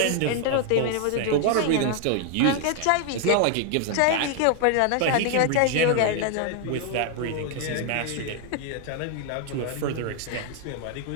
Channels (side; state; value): both; different; correlation 0.00